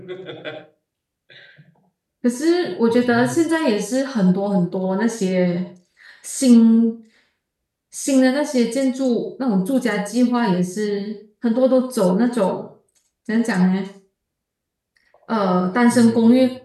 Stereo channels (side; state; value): both; identical; correlation 1.00